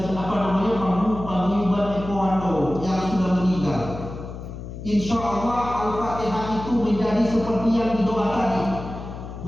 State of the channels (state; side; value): noise; left; hum, 10 dB below the sound